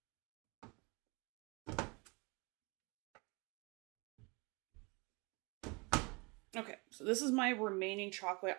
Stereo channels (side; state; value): left; quieter; 28.6 dB